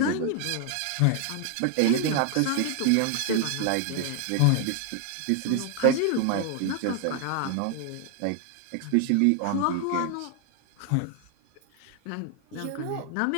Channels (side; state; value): both; different; correlation 0.00